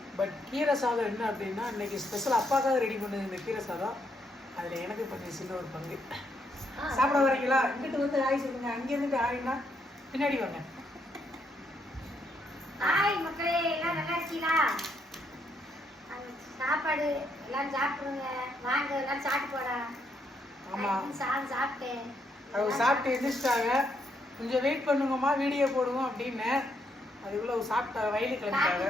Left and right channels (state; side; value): normal; both; correlation 0.76